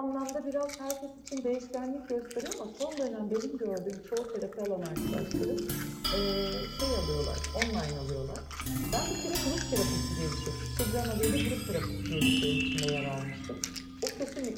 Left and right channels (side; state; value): both; identical; correlation 1.00